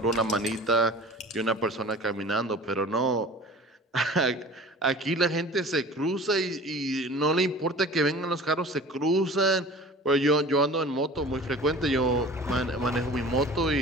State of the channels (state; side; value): normal; both; correlation 0.41